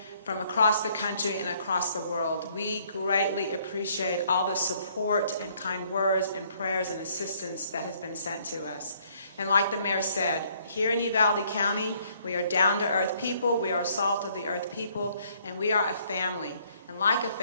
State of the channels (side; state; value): both; inverted; correlation -0.65